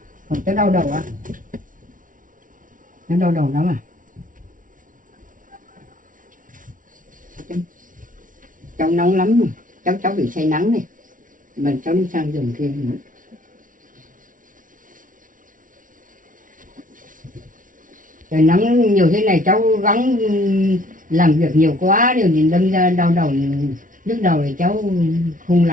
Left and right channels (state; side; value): late; left; 0.38 ms